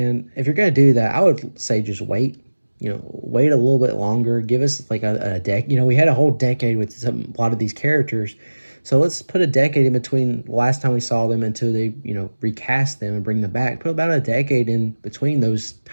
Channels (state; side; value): inverted; both; correlation -1.00